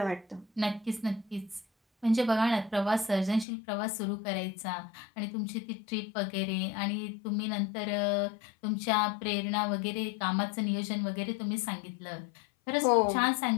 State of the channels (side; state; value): right; drops out; at 3.5 s